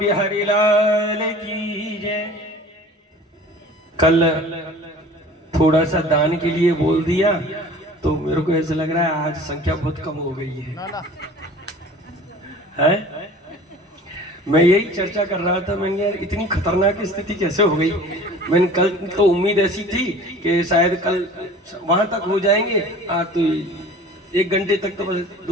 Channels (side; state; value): both; normal; correlation 0.44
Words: लाल की जय। कल थोड़ा सा दान के लिए बोल दिया तो मेरे को ऐसा लग रहा है आज संख्या बहुत कम हो गई है? मैं यही चर्चा कर रहा था, मैंने यार इतनी खतरनाक स्थिति कैसे हो गई। मैंने कल तो उम्मीद ऐसी थी कि शायद कल वहां तक हो जाएंगे, आज तो 1 घंटे तक तो बस